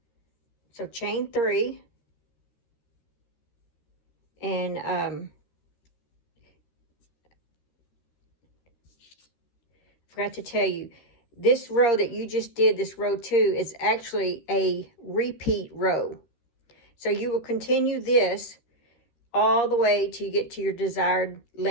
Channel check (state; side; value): late; right; 13 ms